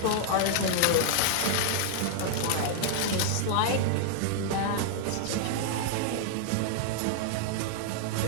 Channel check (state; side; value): different; both; correlation -0.01